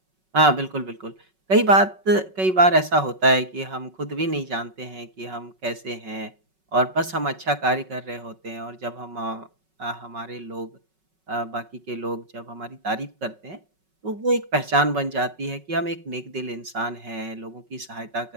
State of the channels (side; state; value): left; late; 5.3 ms